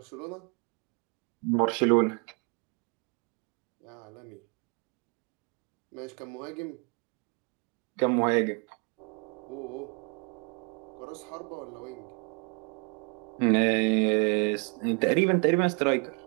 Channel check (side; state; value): left; quieter; 32.2 dB